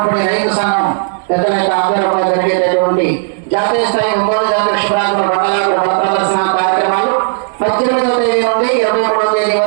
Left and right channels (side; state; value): left; silent; digital silence